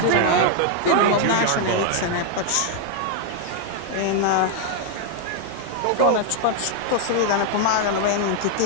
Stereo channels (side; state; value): both; different; correlation 0.00